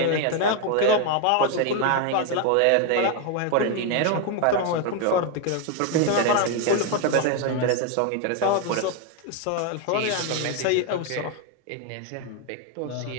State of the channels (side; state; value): both; different; correlation 0.01